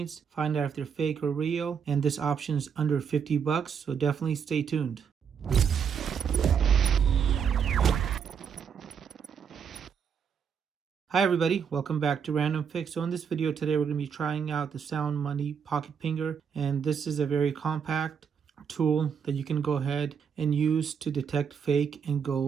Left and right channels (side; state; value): left; quieter; 7.1 dB